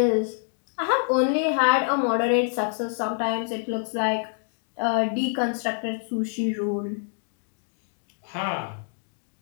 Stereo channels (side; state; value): right; silent; 58 dB below the other